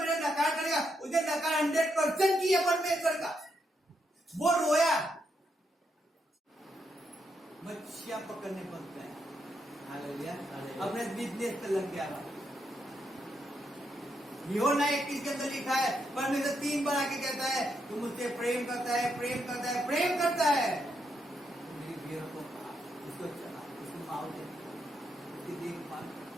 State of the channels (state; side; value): normal; both; correlation 0.80